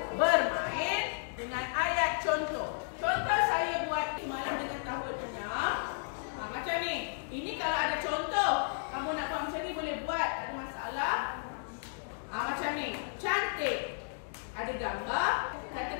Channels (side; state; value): right; silent; digital silence